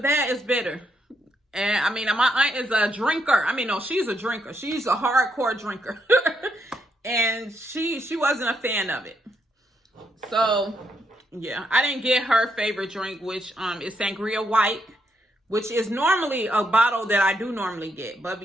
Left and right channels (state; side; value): normal; both; correlation 0.78